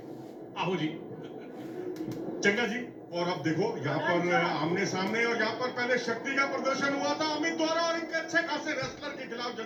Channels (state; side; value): identical; both; correlation 1.00